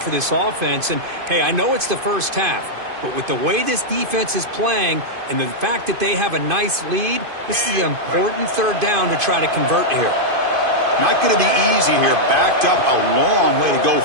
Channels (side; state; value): left; late; 2.5 ms